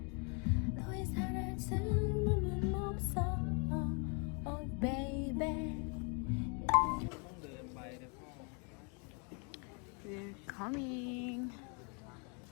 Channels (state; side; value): quieter; right; 35.9 dB